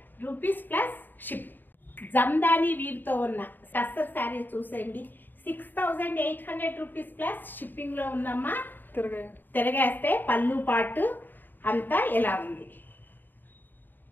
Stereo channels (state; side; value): late; right; 0.091 ms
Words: రూపీస్ ప్లస్ షిప్పింగ్. జమ్దాని వీవ్తో ఉన్న టస్సర్ శారీ చూసేయండి. 6800 రూపీస్ ప్లస్ షిప్పింగ్ లో ఉందమ్మా. తిరగేస్తే పళ్ళు పాటు అంతా ఇలా ఉంది.